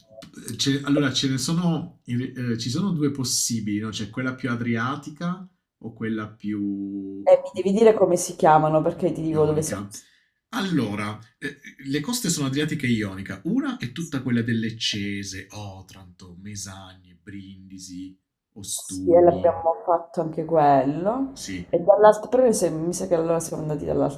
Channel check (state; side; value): identical; both; correlation 1.00